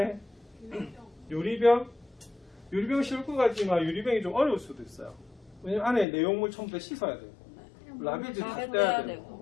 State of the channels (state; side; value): drops out; right; at 6.1 s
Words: 유리병. 유리병 쉬울 것 같지만 유리병이 좀 어려울 수도 있어요. 왜냐면 안에 내용물 전부 다 씻어야 되고 라베즈 다 떼야